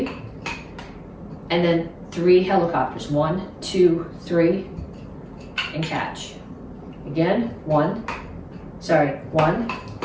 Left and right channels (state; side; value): identical; both; correlation 1.00